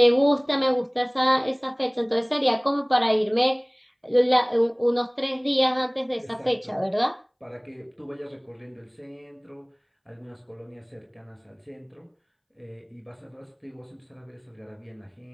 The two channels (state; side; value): identical; both; correlation 1.00